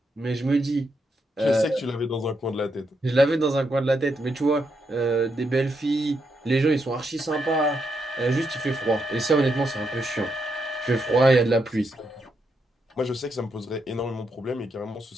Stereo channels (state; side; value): normal; both; correlation 0.81